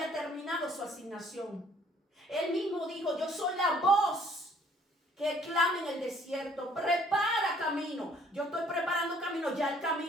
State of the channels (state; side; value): normal; both; correlation 0.60